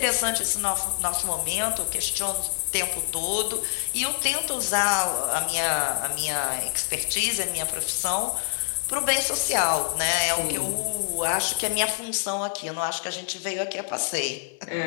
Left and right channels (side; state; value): right; silent; 61 dB below the other